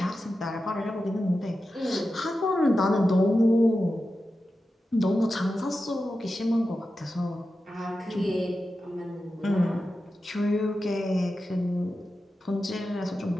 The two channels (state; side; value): normal; both; correlation 0.92